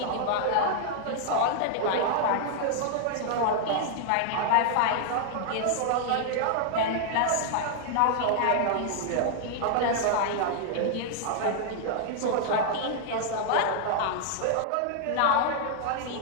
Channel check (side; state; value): both; different; correlation 0.00